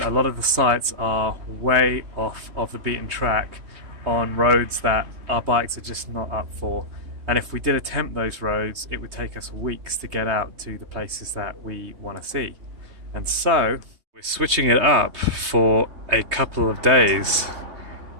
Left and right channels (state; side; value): late; left; 3.2 ms